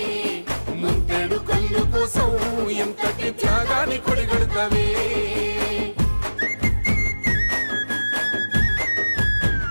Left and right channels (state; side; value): inverted; both; correlation -1.00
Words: ముంతేడు కళ్ళు కోసం ఎంతటి త్యాగాన్ని కొడిగడతావే